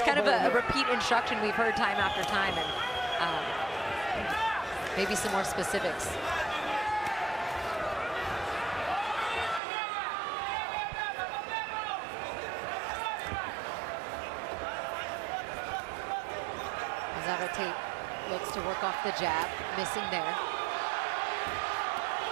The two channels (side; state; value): left; drops out; at 9.6 s